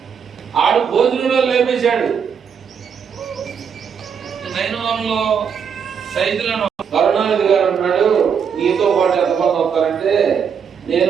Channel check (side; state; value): left; quieter; 7.0 dB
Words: ఆడు భోజనంలో లేపేశాడు. నైనవరంలో సైదులను కరుణానిధి గారు అంటున్నాడు, నీతో పాటు ఎంతమంది వస్తారంటే